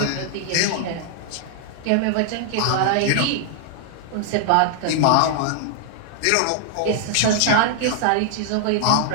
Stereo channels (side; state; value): both; different; correlation 0.00